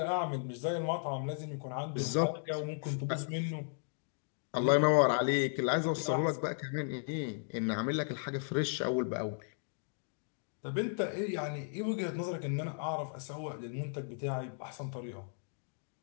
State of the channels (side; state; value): right; silent; digital silence